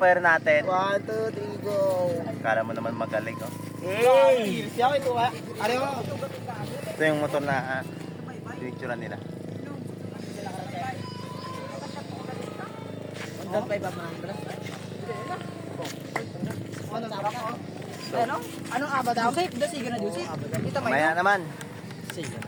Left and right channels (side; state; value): both; identical; correlation 1.00